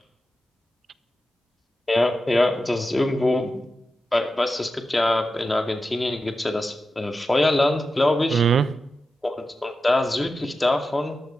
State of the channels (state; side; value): normal; both; correlation 0.91